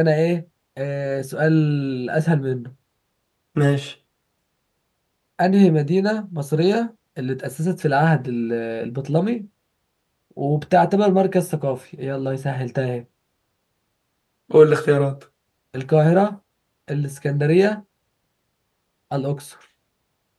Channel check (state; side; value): identical; both; correlation 1.00